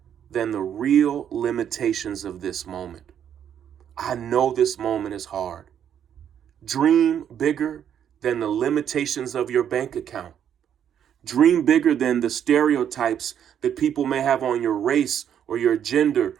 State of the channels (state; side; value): quieter; left; 9.2 dB